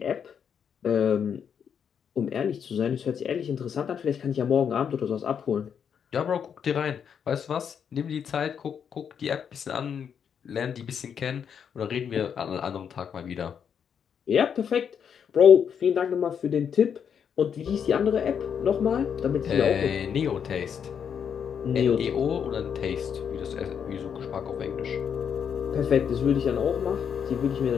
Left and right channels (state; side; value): quieter; right; 7.6 dB